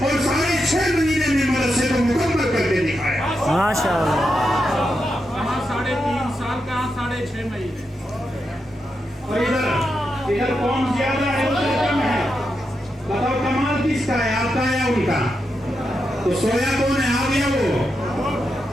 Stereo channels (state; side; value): normal; both; correlation 0.86